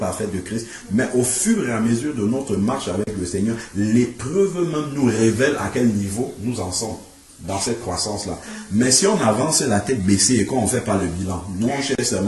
de Christ. Mais au fur et à mesure de notre marche avec le Seigneur, l'épreuve même nous révèle à quel niveau nous en sommes dans cette croissance-là. Mais si on avance la tête baissée et qu'on ne fait pas le bilan, nous on cherche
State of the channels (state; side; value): identical; both; correlation 1.00